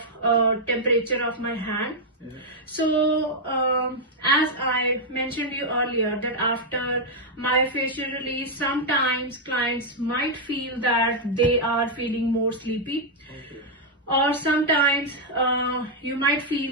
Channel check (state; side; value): normal; both; correlation -0.03